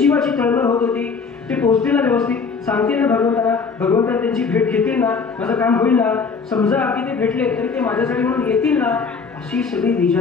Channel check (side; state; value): right; quieter; 5.2 dB